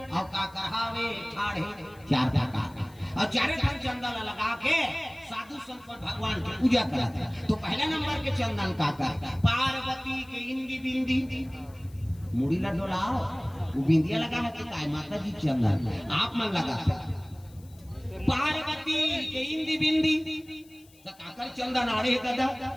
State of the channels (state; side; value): noise; left; hiss, 27 dB below the sound